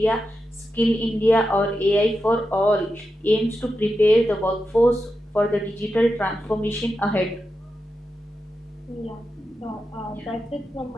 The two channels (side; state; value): both; normal; correlation 0.89